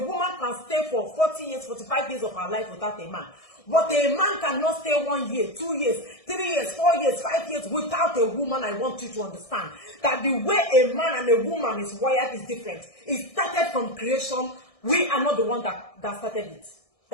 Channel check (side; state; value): right; late; 1.6 ms